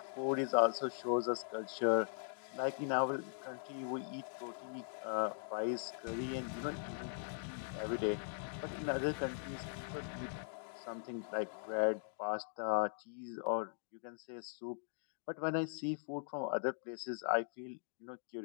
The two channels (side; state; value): right; silent; digital silence